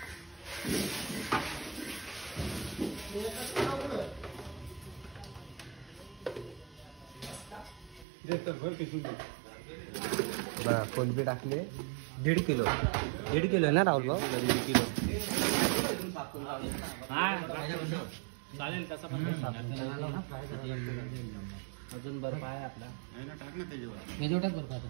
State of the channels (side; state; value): left; drops out; at 8.1 s